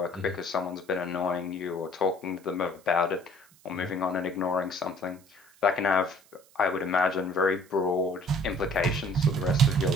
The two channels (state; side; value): noise; right; hiss, 28 dB below the sound